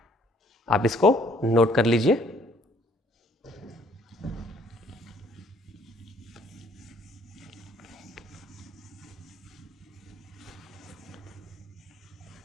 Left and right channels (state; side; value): normal; both; correlation 0.61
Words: आप इसको नोट कर लीजिए.